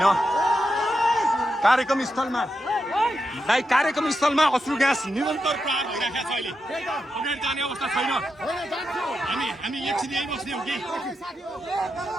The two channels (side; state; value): both; normal; correlation 0.86